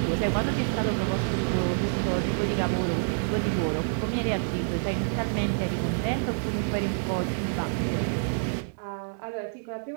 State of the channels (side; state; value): left; silent; 60 dB below the other